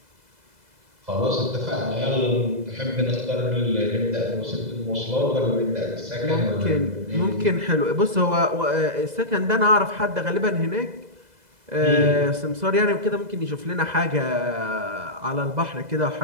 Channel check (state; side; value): late; left; 2.0 ms